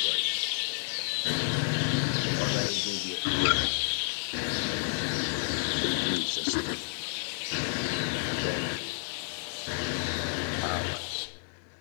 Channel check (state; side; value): silent; right; digital silence